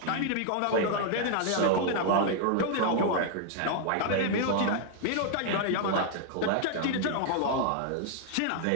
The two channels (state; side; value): different; both; correlation 0.00